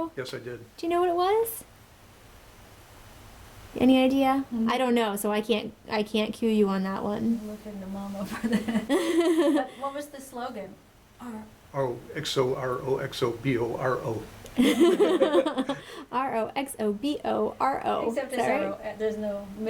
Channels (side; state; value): both; identical; correlation 1.00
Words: Yes, I did. Do you know what it was? Any idea? Mm-hmm. I don't know, so I can't cue you on that one. I'm looking to Mom over there. What was the slogan? R-O-X-O-R-O-X-O-B-O-R-O. R-O-X-O-B-O-R-O. Except it's R-O, there's no